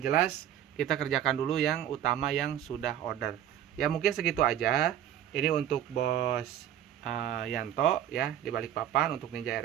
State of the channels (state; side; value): quieter; left; 10.9 dB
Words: jelas kita kerjakan dulu yang utama yang sudah order. Ya mungkin segitu aja. Ini untuk Bos Yanto ya di Balikpapan untuk Ninja